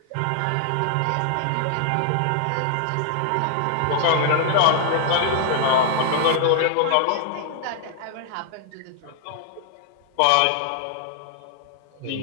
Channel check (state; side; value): different; both; correlation -0.01